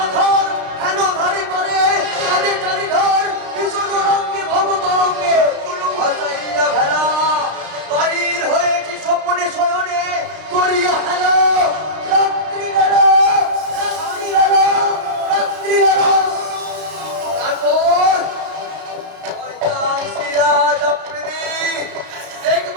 আধার, হেন ধারি পারে কাজে চারিধার, ভীষণ রঙ্গে ভবতরঙ্গে ভাসাইয়া ভেলা, বাড়ির হয়েছি স্বপ্নে শয়নে করিয়া হেলা, রাত্রি বেলা, রাত্রি বেলা, রাত্রি বেলা। তারপর সিরাজ আফ্রিদি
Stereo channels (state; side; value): late; left; 33 ms